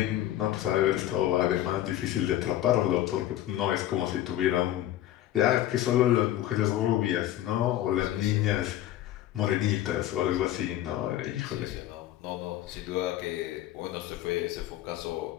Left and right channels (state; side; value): quieter; right; 13.2 dB